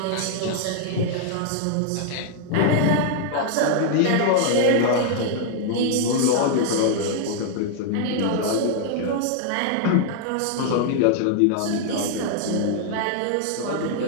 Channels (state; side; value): different; both; correlation 0.00